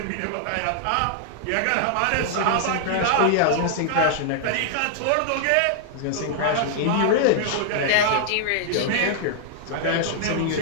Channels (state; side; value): different; both; correlation -0.01